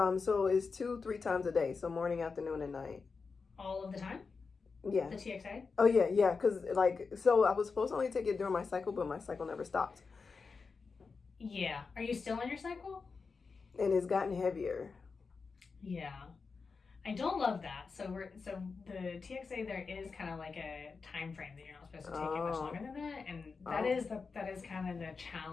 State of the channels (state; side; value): quieter; right; 4.8 dB